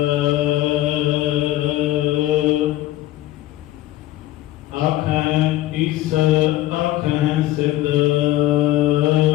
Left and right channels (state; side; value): quieter; right; 15.4 dB